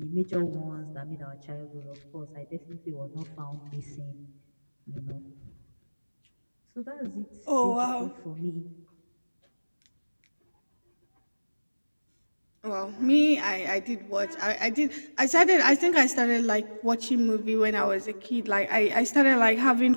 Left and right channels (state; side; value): inverted; both; correlation -1.00